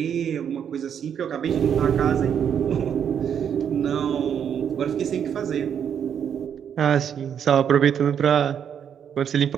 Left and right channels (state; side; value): quieter; left; 8.3 dB